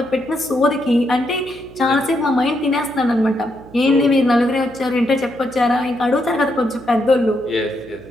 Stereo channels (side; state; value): right; noise; hum, 20 dB below the sound